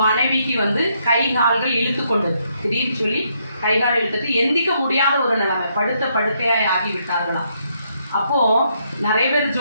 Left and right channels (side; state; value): both; inverted; correlation -0.74